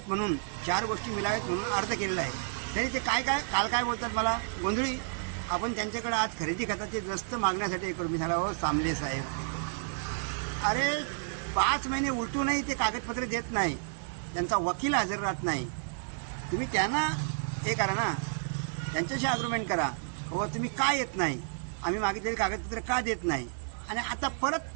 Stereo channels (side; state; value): left; silent; digital silence